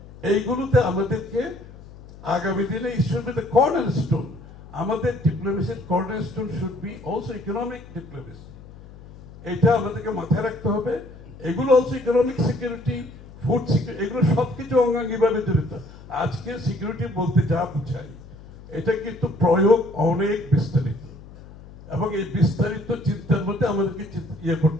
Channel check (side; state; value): left; noise; hum, 18 dB below the sound